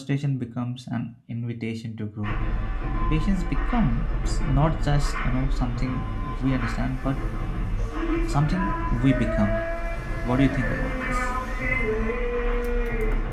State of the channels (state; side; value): identical; both; correlation 1.00